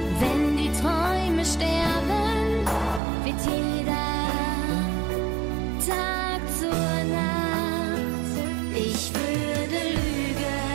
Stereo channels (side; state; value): left; drops out; at 3.0 s